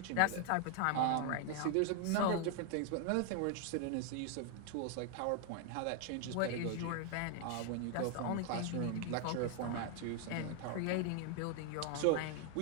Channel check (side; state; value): both; different; correlation 0.00